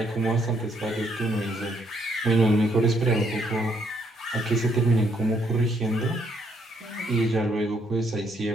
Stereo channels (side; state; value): both; normal; correlation 0.71